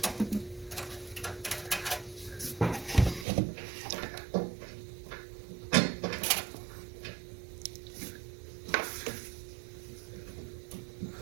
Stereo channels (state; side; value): drops out; left; at 3.2 s